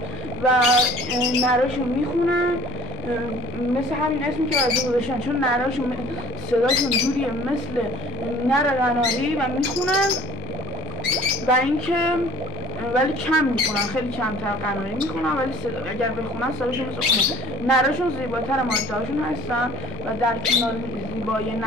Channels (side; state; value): both; normal; correlation 0.50